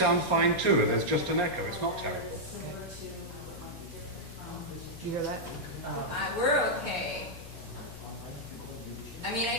fine too, and there's just an echo. It's not terrible. Do you hear that? We're okay. I mean,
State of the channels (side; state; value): left; noise; hum, 14 dB below the sound